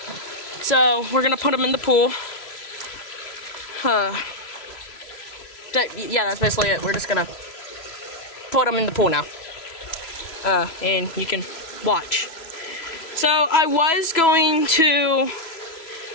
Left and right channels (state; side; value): late; right; 3.0 ms